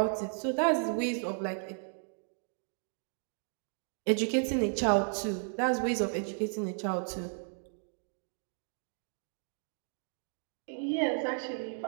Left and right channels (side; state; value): left; silent; 55 dB below the other